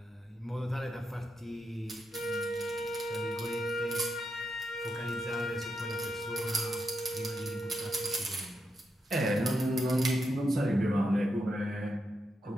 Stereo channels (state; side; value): normal; both; correlation 0.84